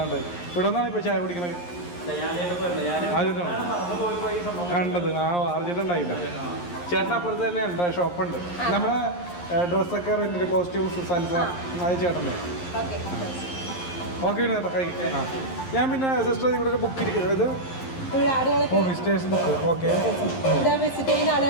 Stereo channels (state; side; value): late; right; 11 ms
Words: ഇവിടെ നിന്നാണ് ഇപ്പോൾ ചായ കുടിക്കണത്. ആദ്യമായിട്ടാണ് കണ്ടത്. ആർജിട്ടുണ്ടായില്ല. ചേട്ടൻ അപ്പുറത്ത് തന്നെ ഉണ്ട്, ഷോപ്പുണ്ട്. നമ്മുടെ ഡ്രസ്സൊക്കെ റെൻറ്റിൻ്റെ കോസ്റ്റ്യൂംസ് സൽസ അത് ചേട്ടൻ്റെ. ഓക്കെ വിനോദേട്ടാ കഴിക്കും. ഞാൻ പിന്നെ സിസ്റ്റർ ഇവിടെ ഒരു ബുക്ക് ഇത് ഇവിടെ ആളുകൾക്ക് വിസിറ്റേഴ്സ് ബുക്ക് ഓക്കെ. ഇവിടെ വിസിറ്റ് ചെയ്യുന്ന